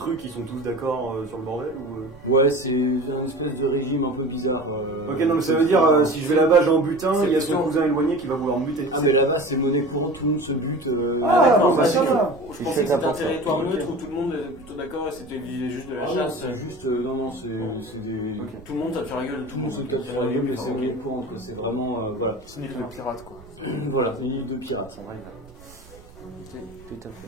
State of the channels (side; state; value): right; noise; rumble, 22 dB below the sound